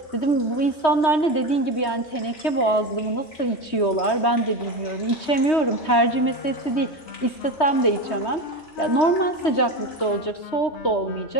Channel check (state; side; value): late; right; 3.2 ms